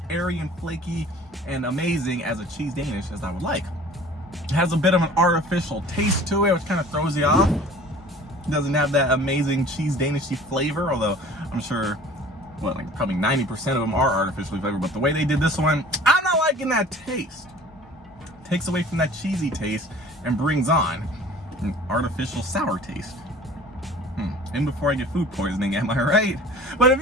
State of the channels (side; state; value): both; normal; correlation 0.46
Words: airy and flaky and amazing as a cheese Danish as I would like. It has a bit of an artificial taste to it, which kind of throws you off. It doesn't have that amazing cheese Danishy flavor, although I'm sure, well, like probably 90% of them are artificially flavored, but the way they did this one, I'm not liking that taste. It takes away from that cheesy taste and brings on an artificial sour taste. And before I get food poisoning, am I right? But